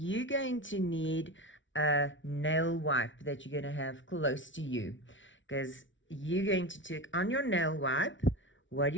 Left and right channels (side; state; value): right; late; 0.56 ms